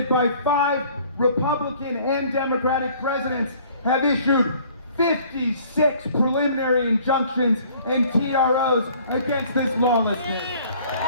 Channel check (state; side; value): inverted; both; correlation -0.55